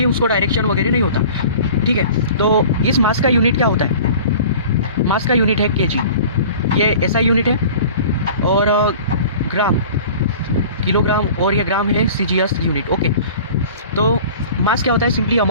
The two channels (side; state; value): both; inverted; correlation -0.42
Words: उसको डायरेक्शन वगैरह नहीं होता, ठीक है। तो इस मास का यूनिट क्या होता है, मास का यूनिट है केजी, ये एसआई यूनिट है, और ग्राम किलोग्राम, और ये ग्राम है सीजीएस यूनिट, ओके। तो मास क्या होता है, simply